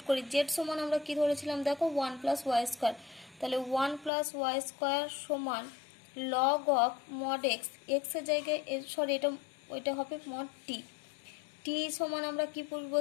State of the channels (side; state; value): right; drops out; at 4.1 s